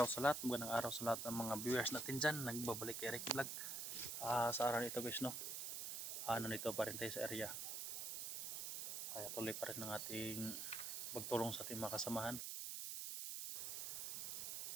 sa lahat. Magandang araw sa lahat ng mga viewers natin dyan. Nagbabalik kay Ricky Vlog. Sa araw nito guys, no? Nandito pa rin tayo sa area. Kaya tuloy pa rin ng ating pagtulong sa ating mga kasamahan.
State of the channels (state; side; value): noise; right; hiss, 3 dB below the sound